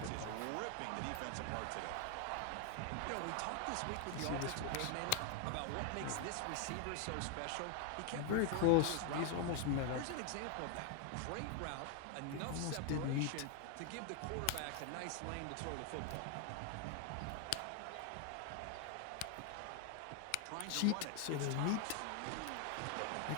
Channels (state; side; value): different; both; correlation 0.00